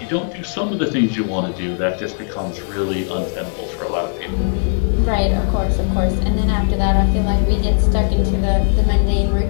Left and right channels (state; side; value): silent; right; digital silence